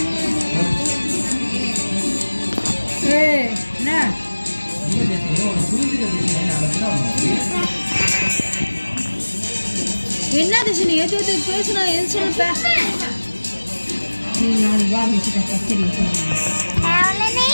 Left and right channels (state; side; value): inverted; both; correlation -1.00